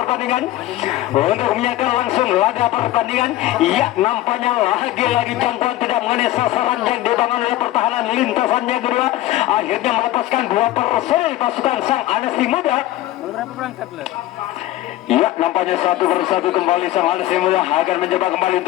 untuk menyaksikan langsung laga pertandingan. Ya, nampaknya lagi-lagi jangkauan tidak mengenai sasaran yang dibangun oleh pertahanan lintasannya kedua. Akhirnya melepaskan 2 personil pasukan sang Anasi Muda. Berapa berangkat lah? Ya, nampaknya satu persatu kembali sang Anasi Muda akan mencoba kembali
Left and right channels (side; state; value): right; quieter; 15.3 dB